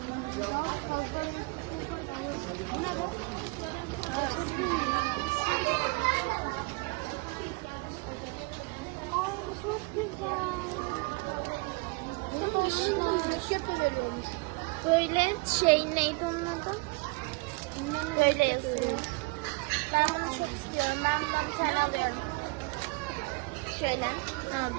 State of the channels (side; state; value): left; quieter; 28.0 dB